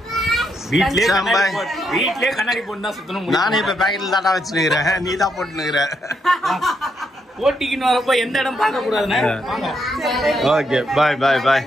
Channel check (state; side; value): normal; both; correlation 0.78